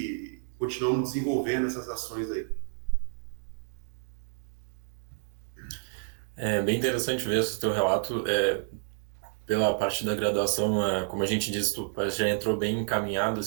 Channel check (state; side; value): silent; left; digital silence